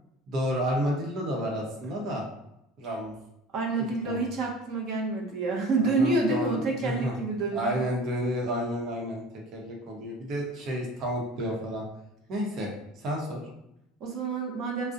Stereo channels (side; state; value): both; normal; correlation 0.41